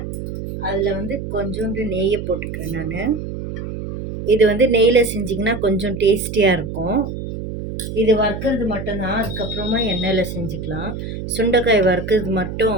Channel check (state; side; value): noise; right; hum, 7 dB below the sound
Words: அதில் வந்து கொஞ்சோண்டு நெய்யை போட்டுக்கிறேன் நான். இது வந்து நெய்யில் செஞ்சிங்கன்னா கொஞ்சம் டேஸ்டியாக இருக்கும். இது வறுக்கிறது மட்டும்தான், அதுக்கப்புறமா எண்ணெயில் செஞ்சுக்கலாம். சுண்டைக்காய் வறுக்கிறது